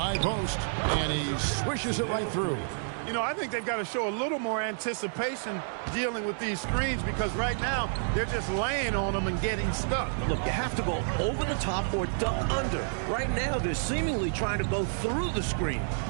post, and he swishes it right through. You know, I think they've got to show a little more anticipation dealing with these screens because right now they're just laying on them and getting stuck. Look, you have to go over the top or duck under. Right now, they're seemingly trying to go through the screen.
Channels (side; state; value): left; silent; digital silence